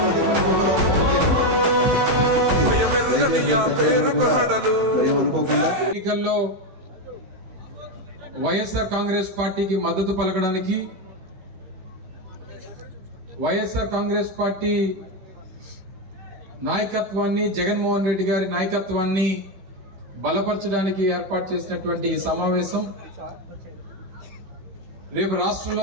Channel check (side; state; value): left; late; 15 ms